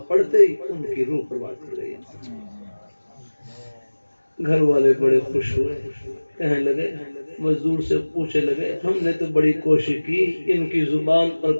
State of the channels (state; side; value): inverted; both; correlation -1.00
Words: پڑھتے ہی ان کی روح پرواز کر گئی. گھر والے بڑے خوش ہوئے, کہنے لگے مزدور سے پوچھنے لگے ہم نے تو بڑی کوشش کی ان کی زبان پر